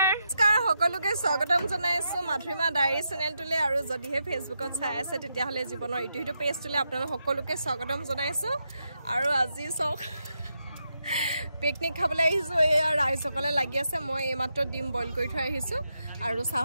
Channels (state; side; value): inverted; both; correlation -0.84